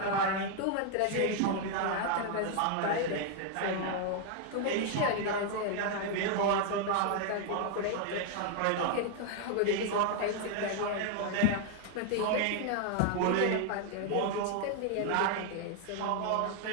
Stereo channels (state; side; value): different; both; correlation 0.00